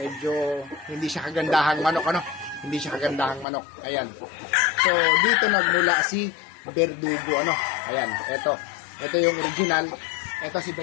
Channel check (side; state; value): right; drops out; at 3.5 s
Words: hindi siya kagandahang manok, ano, hindi siya kagandahang manok. Ayan, so dito nagmula si Verdugo, ano. Ayan, ito yung original. Ito si